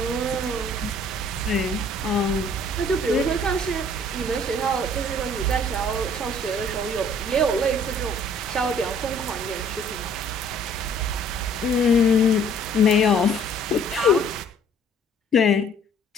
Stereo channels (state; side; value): normal; both; correlation 0.57